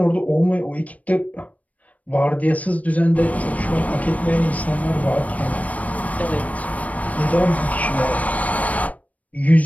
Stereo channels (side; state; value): right; late; 0.069 ms